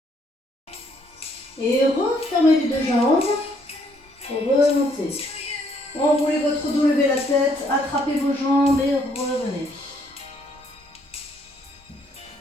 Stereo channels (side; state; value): both; normal; correlation 0.68